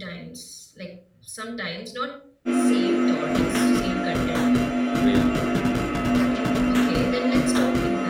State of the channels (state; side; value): identical; both; correlation 1.00